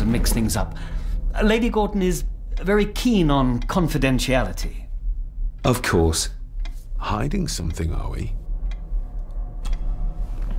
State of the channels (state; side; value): identical; both; correlation 1.00